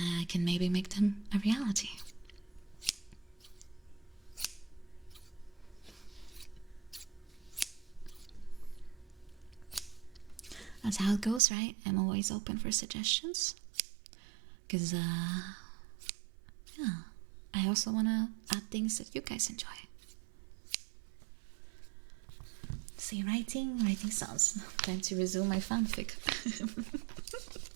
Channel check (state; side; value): drops out; left; at 11.4 s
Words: can maybe make them a reality. That's how it goes, right? I'm always open for suggestions. Because, yeah, I also want to add things that you guys enjoy. See, writing sounds. Time to resume my fanfic.